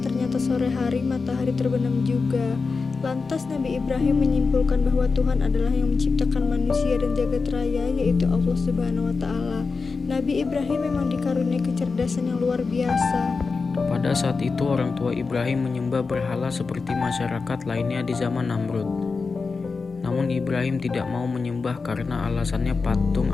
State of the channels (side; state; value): right; quieter; 4.5 dB